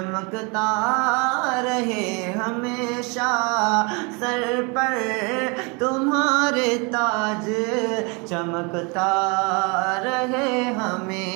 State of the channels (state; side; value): quieter; left; 30.8 dB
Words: रहे हमेशा, सर पर तुम्हारे ताज चमकता रहे